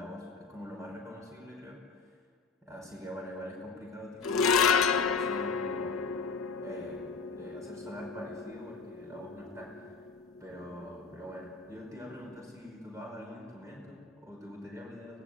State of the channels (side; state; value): right; quieter; 5.0 dB